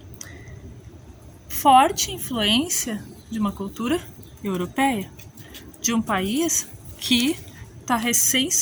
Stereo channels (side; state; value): both; identical; correlation 1.00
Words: Forte influência de uma cultura europeia, de um país que está recém